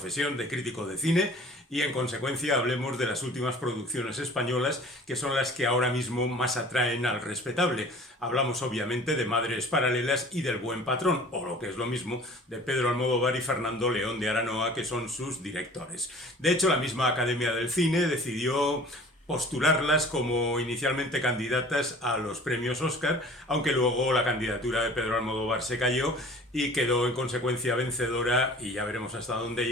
de crítico de cine y en consecuencia hablemos de las últimas producciones españolas que son las que ahora mismo más atraen al respetable. Hablamos obviamente de Madres Paralelas y del Buen Patrón, o lo que es lo mismo, de Pedro Almodóvar y Fernando León de Aranoa, que son sus directores. De hecho, la misma Academia del Cine decidió postularlas como inicialmente candidatas a los premios Oscar, aunque luego la candidatura de Pedro Almodóvar se cayó y quedó en consecuencia vencedora, y ya veremos hasta dónde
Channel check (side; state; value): both; normal; correlation 0.46